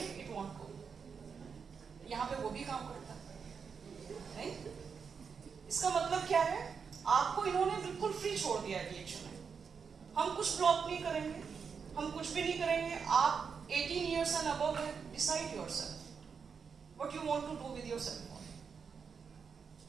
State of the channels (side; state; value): left; quieter; 6.1 dB